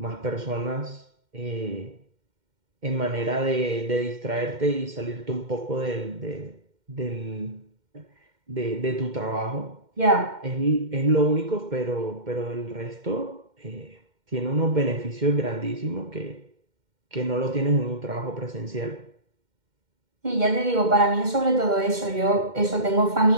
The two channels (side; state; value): left; late; 2.1 ms